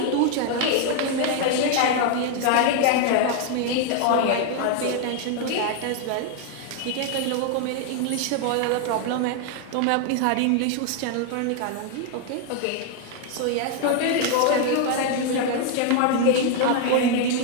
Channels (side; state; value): both; different; correlation 0.00